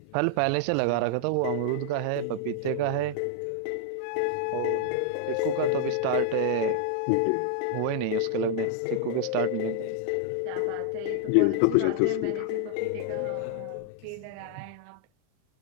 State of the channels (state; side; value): different; both; correlation 0.00